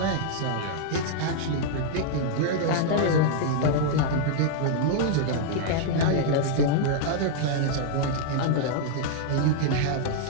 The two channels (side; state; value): both; different; correlation -0.01